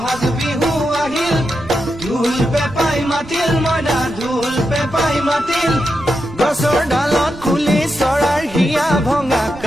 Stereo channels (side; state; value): right; noise; rumble, 18 dB below the sound